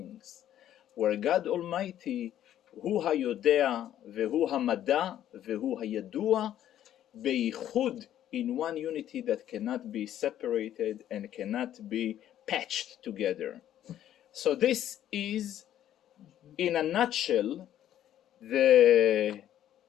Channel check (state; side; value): quieter; right; 11.5 dB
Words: Where God Almighty, hu hayodea vehu hamada vehu hayadua, beichud, in one unity that cannot be separated and cannot be patched together. So this is, in a nutshell, the